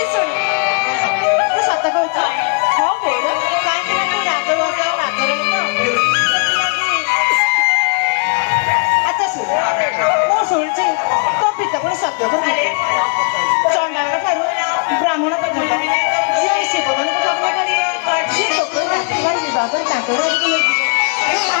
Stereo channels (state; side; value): quieter; right; 35.2 dB